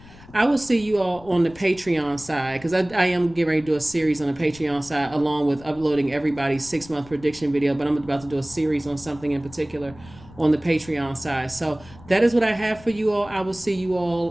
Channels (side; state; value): left; noise; rumble, 21 dB below the sound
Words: I will see you all on the Patreon side because I am getting ready to do a series on the Patreon side along with uploading everybody's 6-month prediction video. But I'm about to do a series on something in particular on the Patreon side. So that is what I have for you all. I will see you